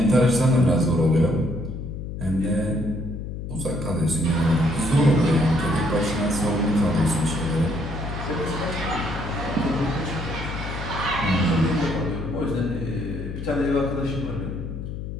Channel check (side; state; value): left; noise; hum, 7 dB below the sound